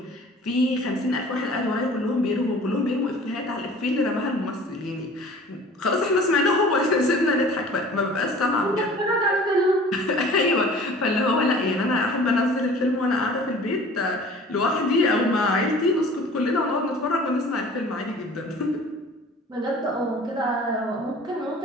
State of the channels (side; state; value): both; normal; correlation 0.46